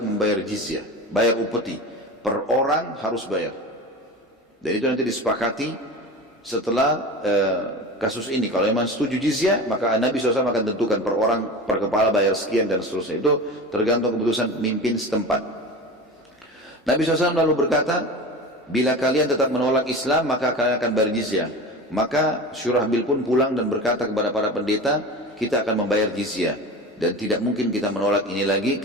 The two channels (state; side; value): normal; both; correlation 0.31